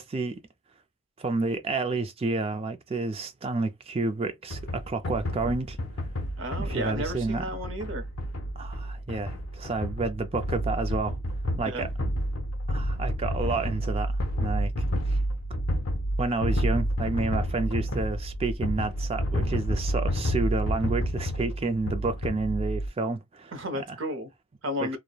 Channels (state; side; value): normal; both; correlation 0.66